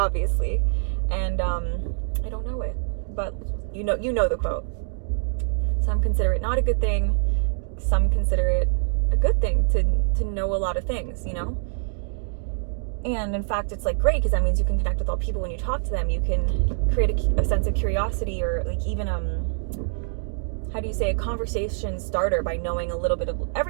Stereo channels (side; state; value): left; silent; digital silence